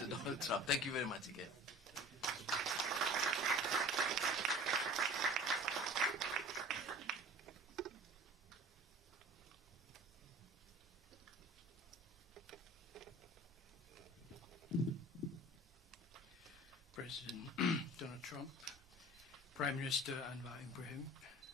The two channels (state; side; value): normal; both; correlation 0.42